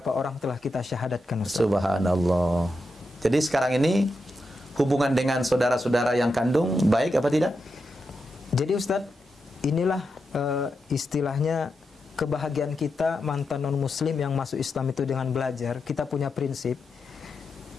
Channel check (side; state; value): both; normal; correlation 0.87